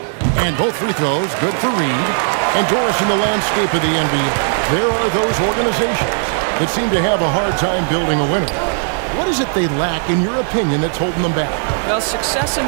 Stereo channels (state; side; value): silent; left; digital silence